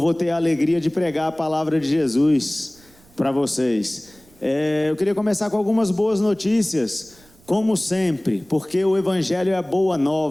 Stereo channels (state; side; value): noise; right; rumble, 29 dB below the sound